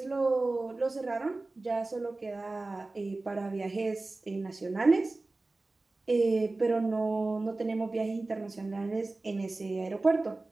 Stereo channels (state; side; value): quieter; left; 3.2 dB